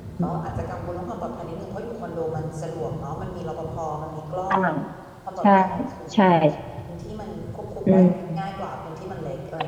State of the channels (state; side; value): identical; both; correlation 1.00